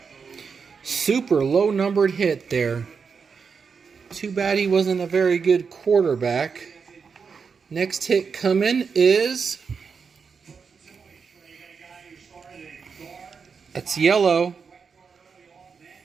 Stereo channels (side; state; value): left; quieter; 5.7 dB